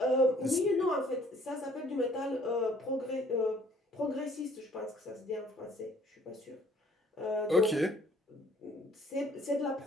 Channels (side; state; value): both; normal; correlation 0.58